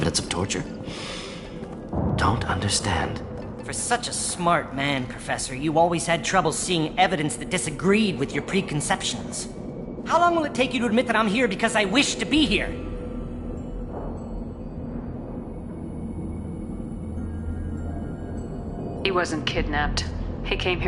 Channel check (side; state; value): both; identical; correlation 1.00